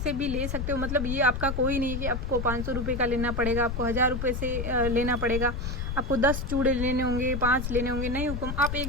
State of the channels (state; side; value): noise; left; rumble, 4 dB below the sound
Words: भी ले सकते हो, मतलब ये आपका कोई नहीं है कि आपको 500 रुपये का लेना पड़ेगा, आपको 1000 रुपये से लेना पड़ेगा, आपको 10 चूड़े लेने होंगे, 5 लेने होंगे, नहीं हुकुम, आप